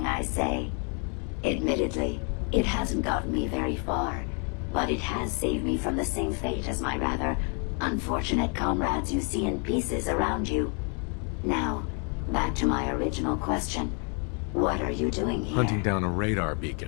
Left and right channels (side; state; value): right; quieter; 38.4 dB